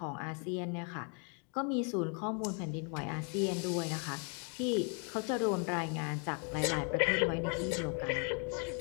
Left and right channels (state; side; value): quieter; right; 38.3 dB